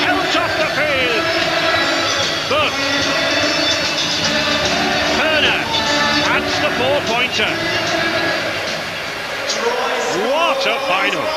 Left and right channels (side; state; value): both; identical; correlation 1.00